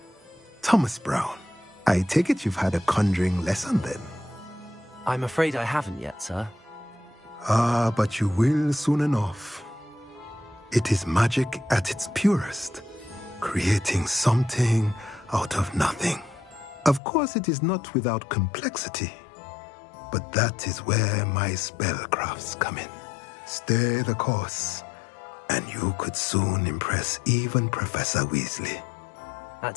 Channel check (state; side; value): drops out; right; at 17.0 s